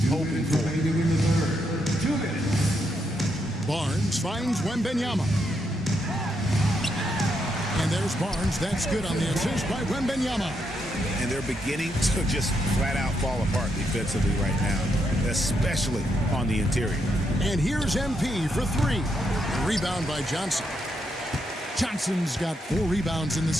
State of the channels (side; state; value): both; normal; correlation 0.79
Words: hoping for. Barnes finds Wembanyama. And there's Barnes. That's good on the assist by Wembanyama. And they're beginning to just flat out fall apart defensively right now, especially on the interior. And here's MP for three. Rebound by Johnson. Johnson's got 4 rebounds in